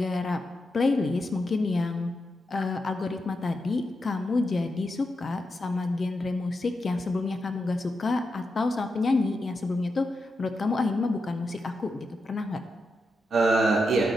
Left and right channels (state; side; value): normal; both; correlation 0.86